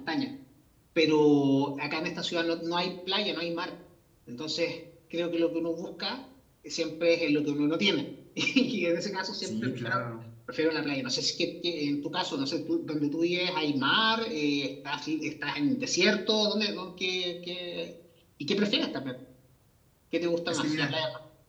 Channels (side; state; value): both; identical; correlation 1.00